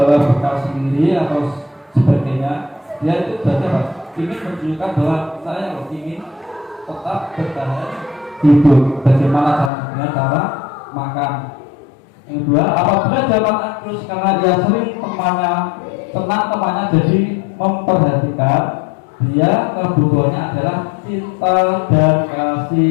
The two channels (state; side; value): drops out; right; at 9.7 s